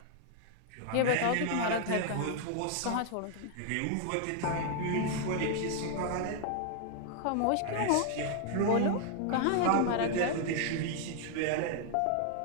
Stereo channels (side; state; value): both; different; correlation 0.00